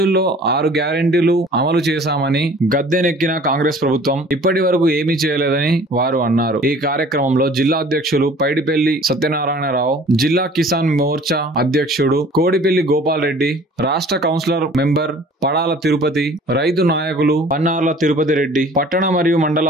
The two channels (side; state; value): both; normal; correlation 0.49